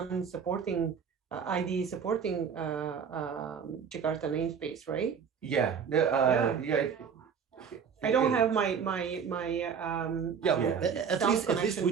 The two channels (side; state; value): left; quieter; 6.8 dB